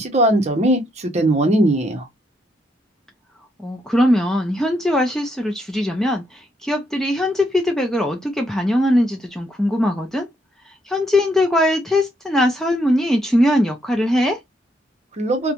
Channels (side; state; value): both; normal; correlation 0.75